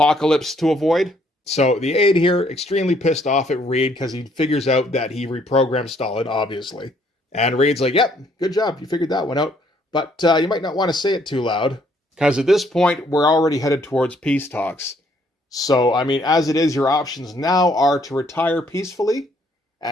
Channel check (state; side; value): normal; both; correlation 0.66